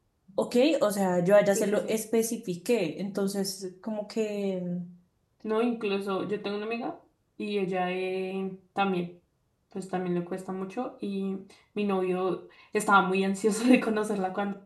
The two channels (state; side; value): identical; both; correlation 1.00